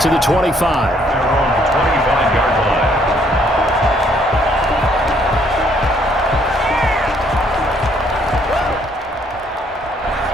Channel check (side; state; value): both; normal; correlation 0.66